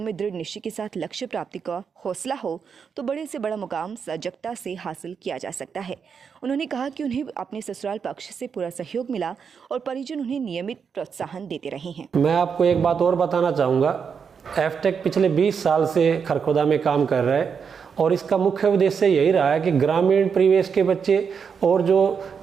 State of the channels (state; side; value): quieter; left; 6.4 dB